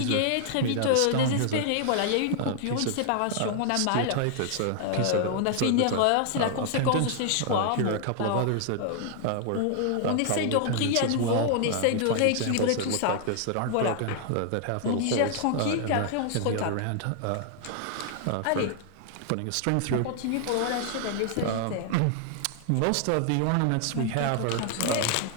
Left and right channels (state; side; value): different; both; correlation 0.00